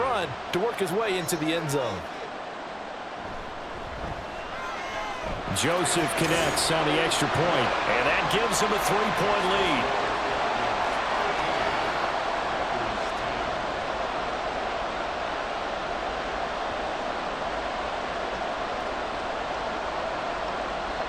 to work his way into the end zone. Joseph connects on the extra point. And that gives him a 3-point lead.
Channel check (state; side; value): identical; both; correlation 1.00